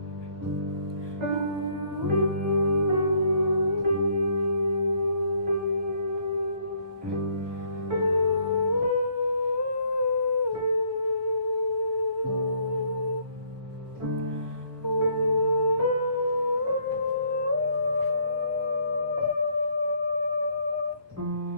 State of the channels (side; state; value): left; late; 1.4 ms